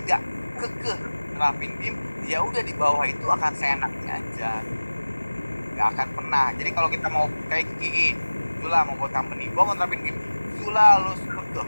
kekeh nerapin BIM, ya udah di bawah itu akan seenaknya aja, nggak akan pernah. Jadi kalau kita mau kayak gigi, Zula mau buat company, gua mau nerapin BIM, Zula lu tuh,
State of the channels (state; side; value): inverted; both; correlation -1.00